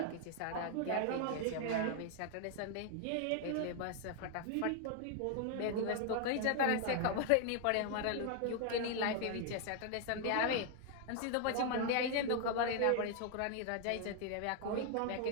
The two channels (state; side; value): different; both; correlation 0.00